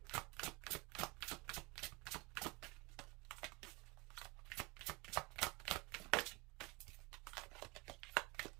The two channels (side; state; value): left; quieter; 26.0 dB